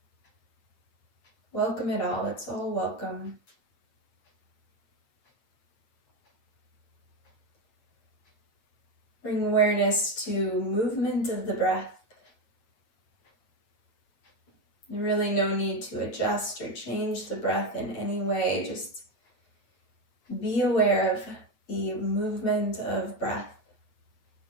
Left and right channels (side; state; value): right; late; 8.7 ms